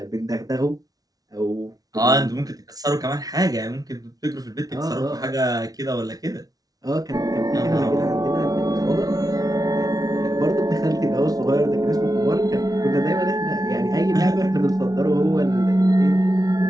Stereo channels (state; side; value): late; left; 0.18 ms